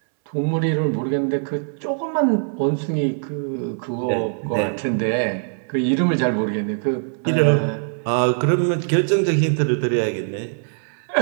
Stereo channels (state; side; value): silent; left; 64 dB below the other